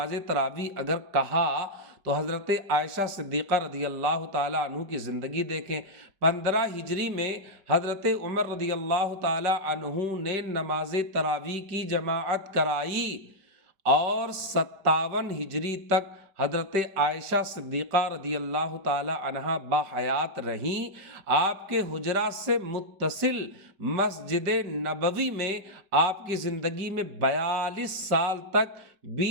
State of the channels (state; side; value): late; left; 5.3 ms